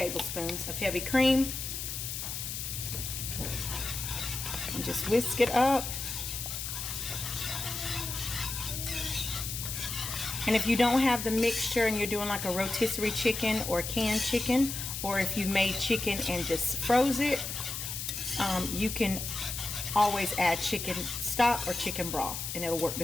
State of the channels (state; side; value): noise; left; hiss, 5 dB below the sound